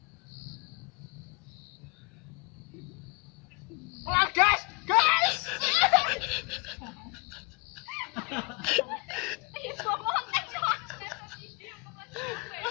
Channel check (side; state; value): right; quieter; 28.6 dB